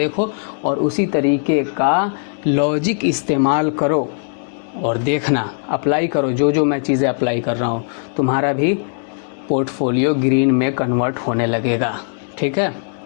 और उसी तरीके का लॉजिक इस्तेमाल करो और देखना, अप्लाई करो। जो जो मैं चीज़ें अप्लाई कर रहा हूँ तुम्हारा भी पोर्टफोलियो ग्रीन में कन्वर्ट होने लगेगा। ठीक है,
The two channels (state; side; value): silent; right; digital silence